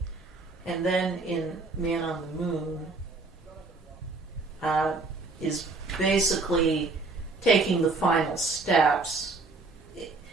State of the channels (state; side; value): quieter; left; 3.6 dB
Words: And then in Man on the Moon is basically taking the final steps.